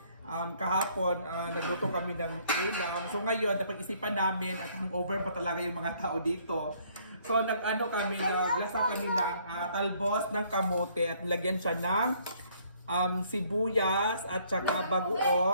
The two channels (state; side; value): inverted; both; correlation -0.64